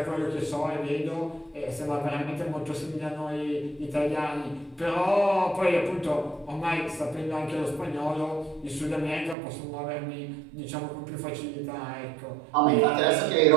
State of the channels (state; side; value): drops out; left; at 9.3 s